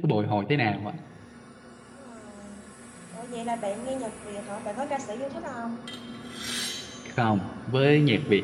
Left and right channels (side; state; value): both; identical; correlation 1.00